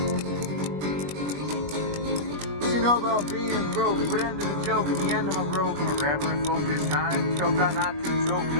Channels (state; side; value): late; left; 21 ms